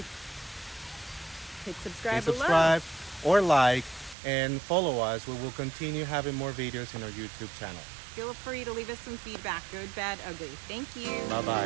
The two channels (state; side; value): drops out; left; at 4.2 s